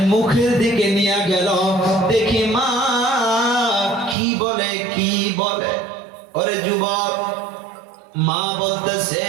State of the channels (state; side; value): drops out; left; at 4.2 s